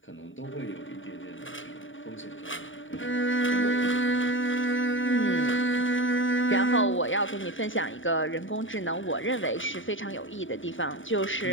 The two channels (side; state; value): right; late; 0.57 ms